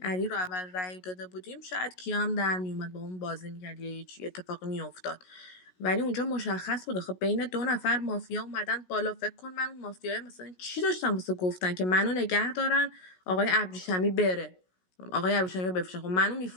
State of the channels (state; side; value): late; right; 16 ms